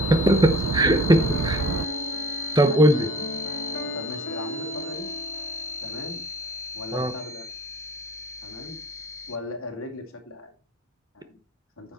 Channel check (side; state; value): both; normal; correlation 0.48